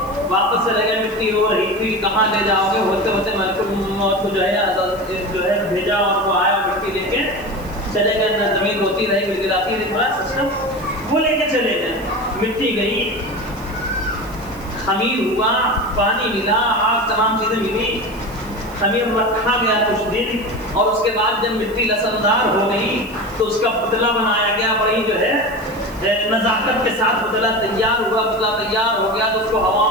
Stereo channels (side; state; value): right; noise; hiss, 22 dB below the sound